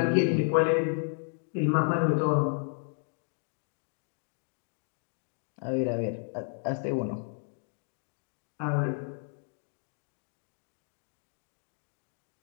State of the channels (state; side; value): silent; right; 56 dB below the other